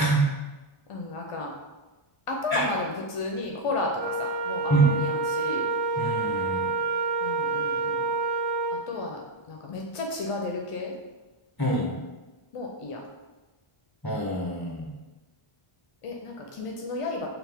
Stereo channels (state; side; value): late; right; 1.5 ms